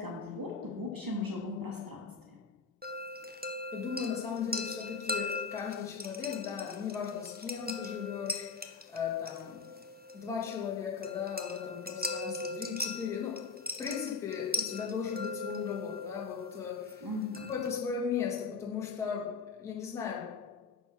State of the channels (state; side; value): quieter; right; 5.0 dB